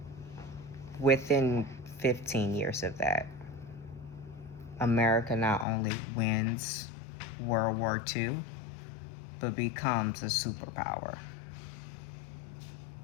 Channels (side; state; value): right; drops out; at 5.7 s